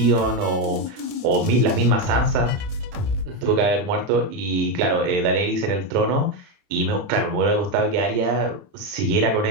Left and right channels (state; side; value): late; left; 30 ms